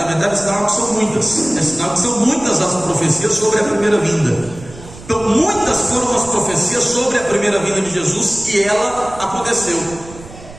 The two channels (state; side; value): noise; right; rumble, 18 dB below the sound